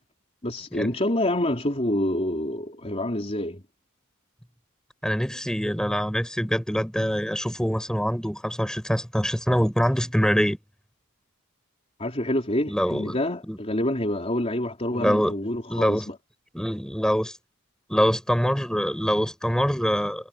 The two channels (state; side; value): normal; both; correlation 0.87